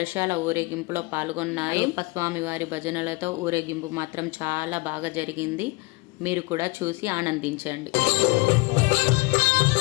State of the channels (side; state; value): right; quieter; 25.8 dB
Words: ఊరేగింపులో పాల్గొన్నారు. అయ్యప్ప స్వామి వారి భజనలతో ఊరేగింపు మాత్రం చాలా బాగా జరిగింది. మీరు కూడా చూసి ఆనందించండి.